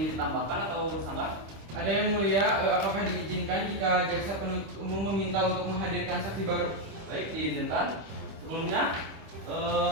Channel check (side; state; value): left; late; 25 ms